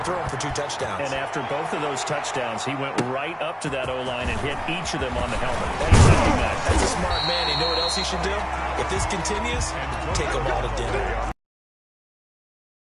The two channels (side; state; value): both; identical; correlation 1.00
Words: through them for 2 touchdowns. And after both of those touchdowns, he went right up to that O-line and hit each of them on the helmet. That's a smart man. You know what else he should do? If this continues, take them all to dinner.